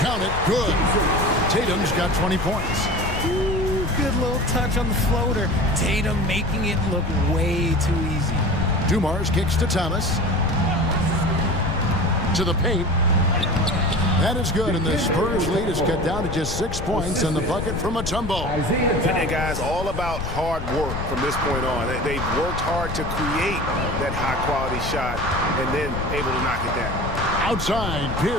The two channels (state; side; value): noise; left; rumble, 6 dB below the sound